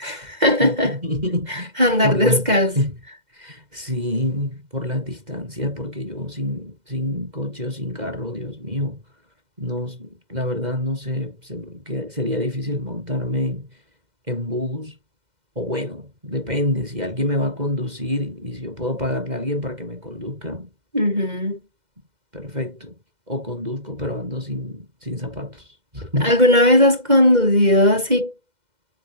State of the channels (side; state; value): left; late; 2.1 ms